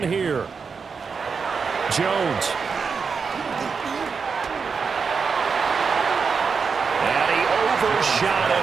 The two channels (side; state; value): left; quieter; 5.5 dB